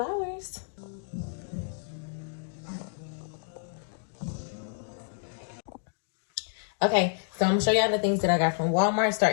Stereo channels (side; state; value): right; silent; digital silence